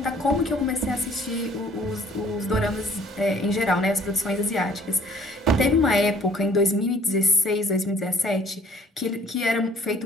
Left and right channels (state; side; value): normal; both; correlation 0.57